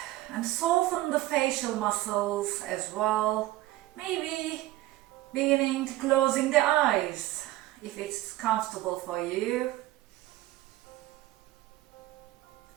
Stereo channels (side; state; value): left; quieter; 16.6 dB